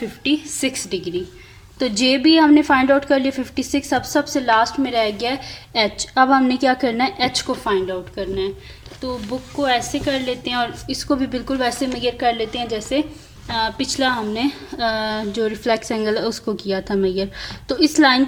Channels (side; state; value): both; identical; correlation 1.00